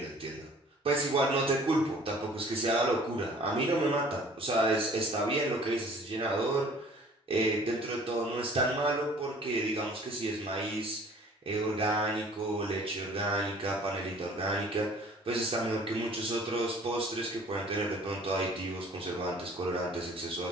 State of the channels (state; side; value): normal; both; correlation 0.52